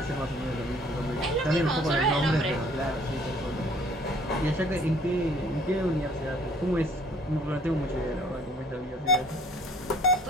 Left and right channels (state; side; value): normal; both; correlation 0.56